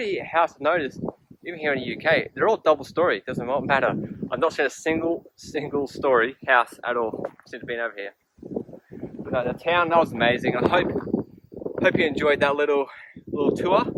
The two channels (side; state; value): both; identical; correlation 1.00